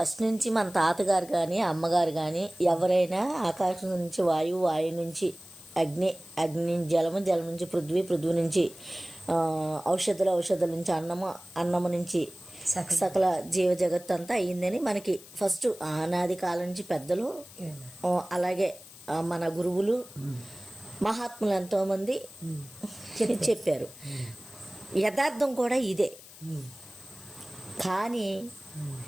నుంచి మన తాతగారు కానీ అమ్మగారు కానీ ఎవరైనా ఆకాశం నుంచి వాయువు, వాయువు నుంచి అగ్ని, అగ్ని నుంచి జలము, జలం నుంచి పృథ్వీ, పృథ్వీ నుంచి ఔషధాలు, ఔషధాల నుంచి అన్నము, అన్నము నుంచి సకల జీవ జగత్తు అంతా అయ్యిందని మనకి ఫస్ట్ ఆనాది కాలం నుంచి పెద్దలు, అలాగే మన గురువులు, మహాత్ములు ఎంతోమంది చెప్పారు. యథార్థం కూడా ఇదే. కానీ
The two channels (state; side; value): noise; left; hiss, 19 dB below the sound